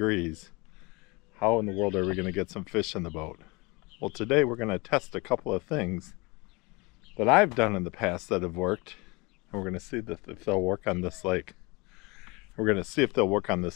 How in the world are we going to get some fish in the boat? Well, today we're going to test a couple of things that I've done in the past that have worked, and we're going to see if they'll work on this lake. We're going to see if they'll work on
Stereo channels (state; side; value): quieter; right; 26.5 dB